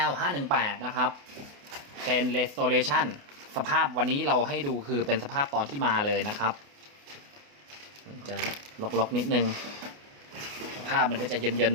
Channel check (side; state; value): left; late; 28 ms